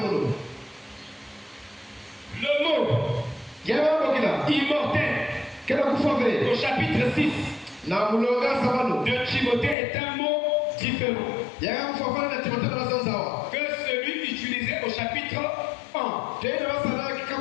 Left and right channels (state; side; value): drops out; right; at 9.8 s